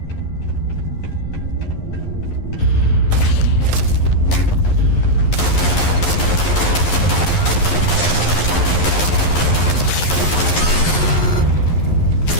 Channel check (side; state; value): right; late; 11 ms